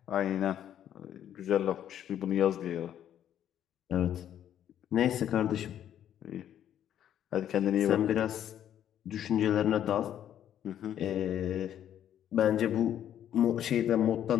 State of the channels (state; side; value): quieter; right; 10.5 dB